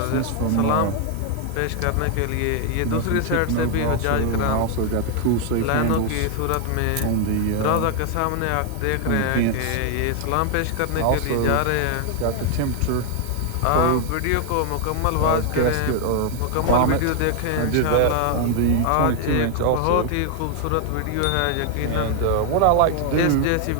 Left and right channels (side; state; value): both; different; correlation 0.00